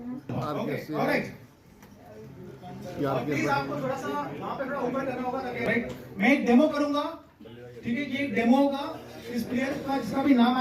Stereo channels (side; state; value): both; identical; correlation 1.00